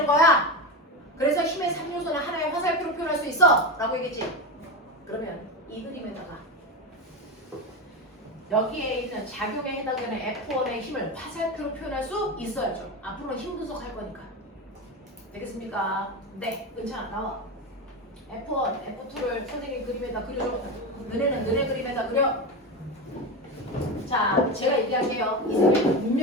거야. 그래서 힘의 3요소는 하나의 화살표로 표현할 수 있어 라고 얘기했지. 그러면 이 그림에다가 여기에 있는 작용에 해당되는 F1의 힘을 화살표로 표현할 수 있어야죠. 앞으로 힘 분석할 거니까. 되겠습니까? 네, 은찬아 나와. F1, F2를 선생님 그림에다 그려줘. 너네는 너네 그림에다 그려. 자, 제가 얘기할게요. 이 그림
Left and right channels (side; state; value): both; normal; correlation 0.18